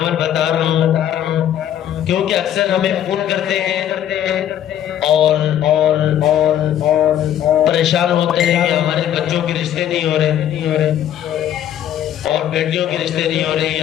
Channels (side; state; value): right; quieter; 10.8 dB